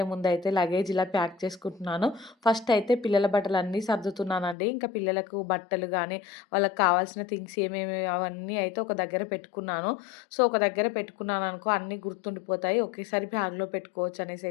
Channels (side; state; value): right; drops out; at 4.5 s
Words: ముందయితే లగేజ్ ఇలా ప్యాక్ చేసుకుంటున్నాను. ఫస్ట్ అయితే పిల్లల బట్టలన్నీ సర్దుతున్నానండి. ఇంకా పిల్లలకు బట్టలు గానీ, వాళ్ళకి కావాల్సిన థింగ్స్ ఏమేమి అవన్నీ అయితే ఒక దగ్గర పెట్టుకున్నాను. సో, ఒక దగ్గర పెట్టుకున్నాననుకో అన్నీ గుర్తుండిపోతాయి. ఒకేసారి బ్యాగ్‌లో పెట్టుకోవచ్చు అనేసి